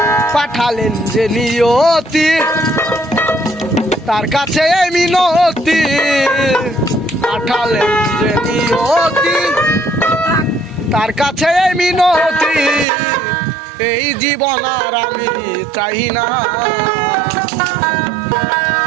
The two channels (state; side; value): drops out; left; at 12.9 s